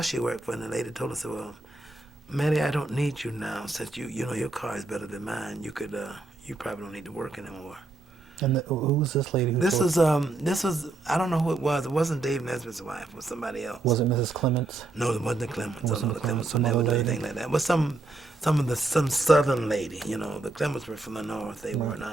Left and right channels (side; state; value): left; quieter; 3.2 dB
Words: she worked for, and the lady told us, well, Maddie, I don't need you now since your car is better than mine. You probably don't need to work anymore. And who was this lady? This was I don't know who it was. It wasn't Dave Nesbitt's wife. It was somebody else. Was it Mrs. Clements? No, it wasn't the Clements. The Clements would never do lady? anything like that. It was some southern lady. The Clements were from the north. They were